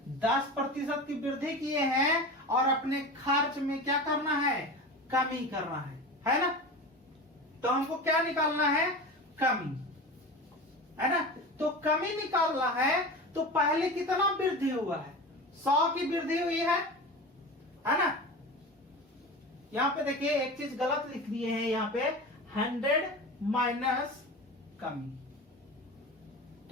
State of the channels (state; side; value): normal; both; correlation 0.30